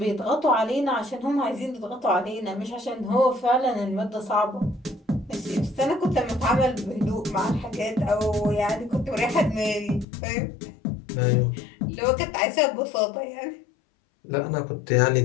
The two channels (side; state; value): right; drops out; at 10.1 s